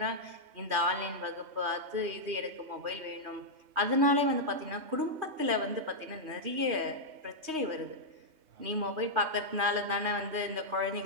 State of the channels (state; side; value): late; left; 3.2 ms